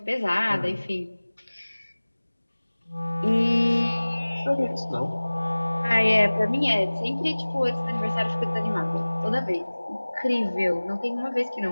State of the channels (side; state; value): both; inverted; correlation -1.00